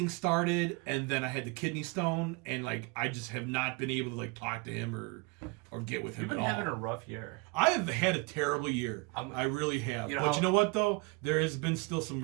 started, and then I had the kidney stone, and like I just have not been able to like talk to him or get with him You've at been all. having a rough year. I have had a terrible year. I really have. You know But how- you know what though? There has been still some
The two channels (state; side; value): quieter; left; 28.6 dB